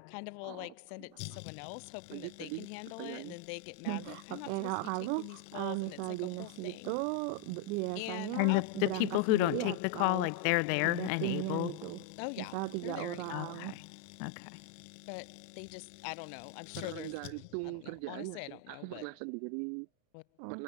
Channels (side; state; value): both; different; correlation 0.01